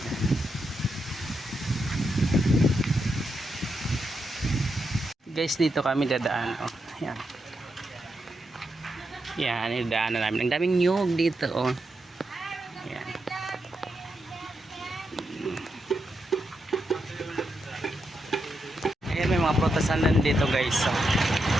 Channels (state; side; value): normal; both; correlation 0.84